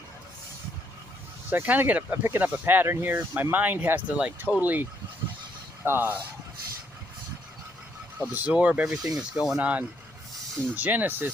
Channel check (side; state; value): left; noise; rumble, 29 dB below the sound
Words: so I kind of I'm picking up a pattern here. My mind has to totally uh, absorb everything that's going on in